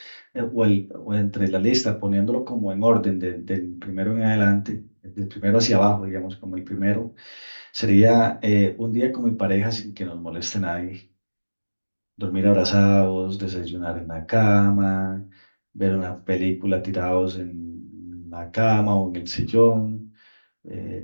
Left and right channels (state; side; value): inverted; both; correlation -1.00